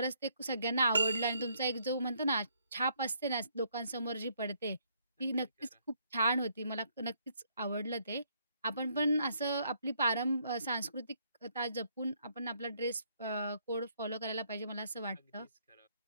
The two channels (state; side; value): inverted; both; correlation -0.70